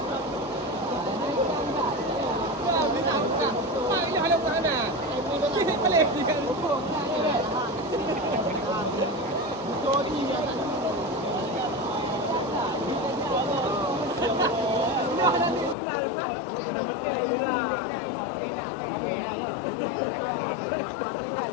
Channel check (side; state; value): right; drops out; at 15.8 s